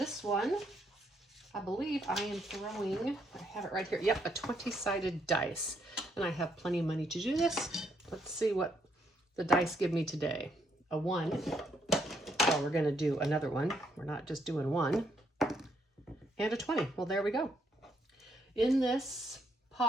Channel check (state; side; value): normal; both; correlation 0.74